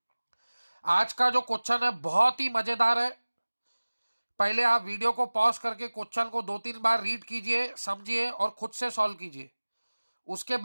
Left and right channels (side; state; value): both; inverted; correlation -1.00